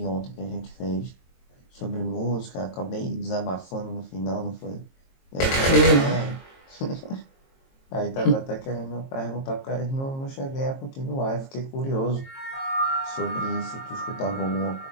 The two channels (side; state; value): right; late; 22 ms